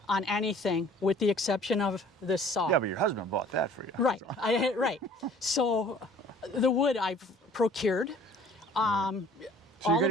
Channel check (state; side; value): normal; both; correlation 0.52